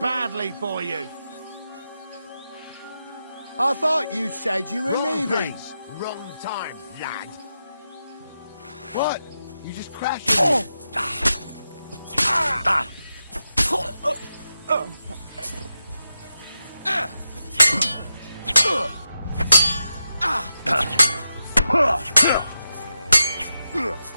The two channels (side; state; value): both; inverted; correlation -0.88